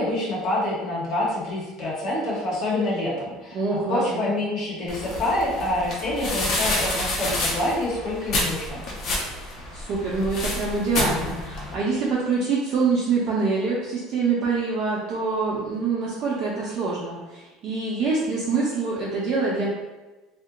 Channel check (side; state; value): both; normal; correlation 0.47